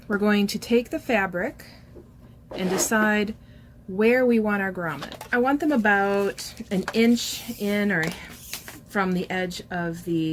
we're going to take the fabric and decide where we want our grommet. I want them about an inch in or from the edge of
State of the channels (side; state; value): both; identical; correlation 1.00